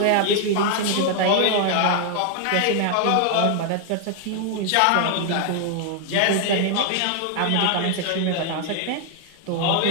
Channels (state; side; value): different; both; correlation 0.00